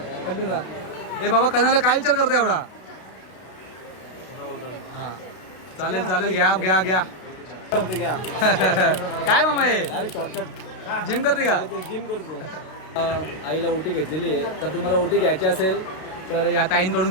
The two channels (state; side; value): late; right; 32 ms